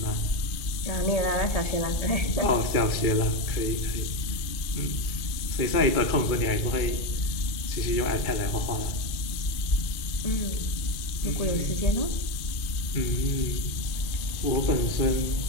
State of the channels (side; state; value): right; late; 2.4 ms